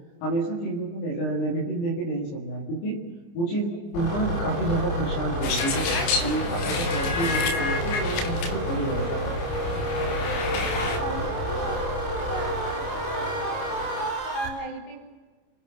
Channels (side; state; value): right; late; 29 ms